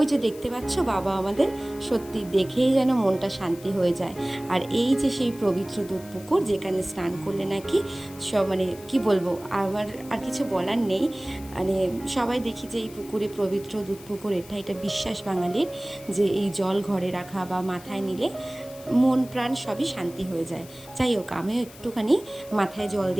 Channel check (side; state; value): left; noise; hiss, 20 dB below the sound